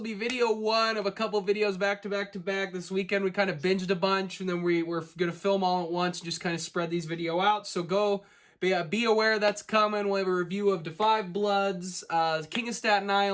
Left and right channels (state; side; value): identical; both; correlation 1.00